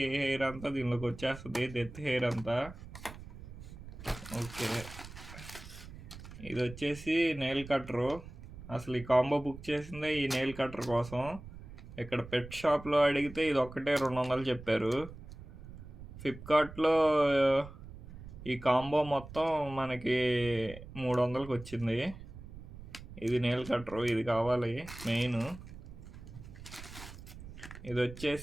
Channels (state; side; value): noise; right; rumble, 14 dB below the sound